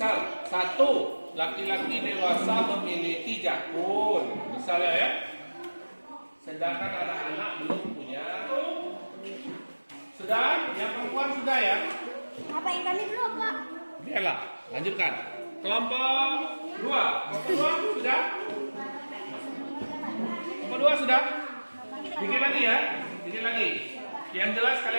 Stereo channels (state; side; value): inverted; both; correlation -1.00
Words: 1, laki-laki dewasa memiliki jakun, misalnya ya. Sedangkan anak-anak belum punya. Sudah? Yang perempuan sudah ya? Apa yang kami belum, Pak? Biarlah, lanjutkan. Kelompok 2. Kelompok 2 sudah? Kelompok 2 sudah? Bikin lagi ya? Bikin lagi. Yang jelas